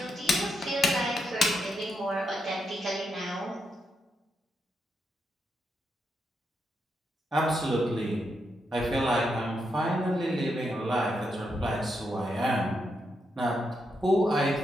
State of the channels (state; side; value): normal; both; correlation 0.82